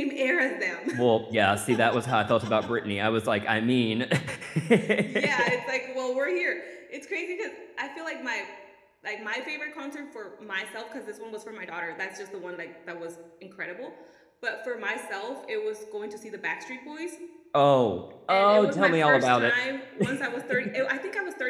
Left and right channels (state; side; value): identical; both; correlation 1.00